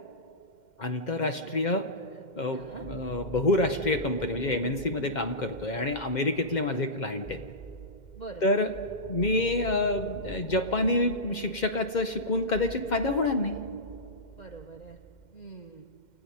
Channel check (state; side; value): late; right; 2.1 ms